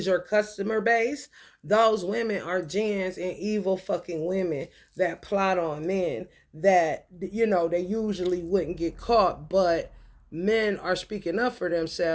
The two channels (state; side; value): identical; both; correlation 1.00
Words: your customer base, those women are jinns and evil fucking women that plot on men that, you know, they usually wouldn't get caught, but men are speaking up for